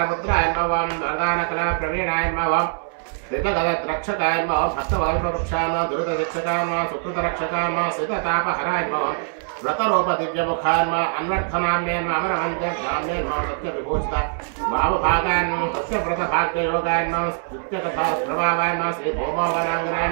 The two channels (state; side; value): silent; left; 62 dB below the other